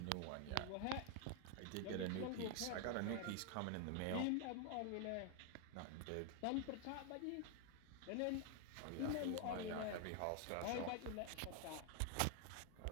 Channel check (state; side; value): different; both; correlation 0.00